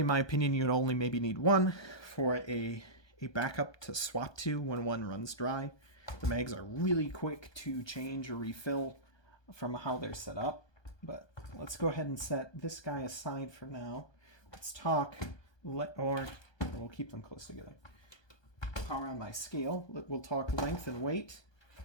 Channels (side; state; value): right; late; 1.2 ms